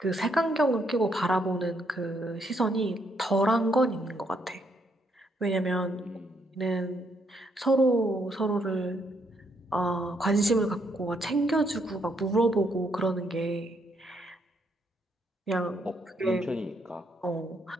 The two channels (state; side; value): normal; both; correlation 0.74